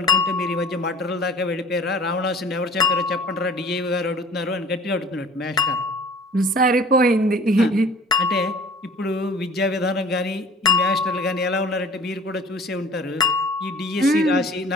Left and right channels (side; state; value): both; normal; correlation 0.47